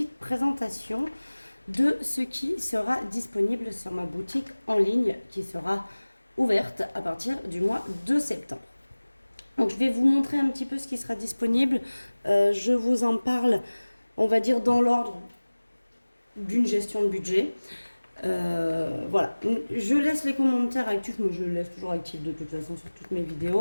présentation de ce qui sera disponible sur ma boutique en ligne qui sera ouverte à partir du mois de septembre. Donc je vais vous montrer un petit peu ce qui sera disponible. Je vous en parle, on va dire dans l'ordre d'une gestion de budget. Voilà, je laisse les commentaires actifs, mais je les laisse toujours actifs de toute façon sur toutes mes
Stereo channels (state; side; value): inverted; both; correlation -1.00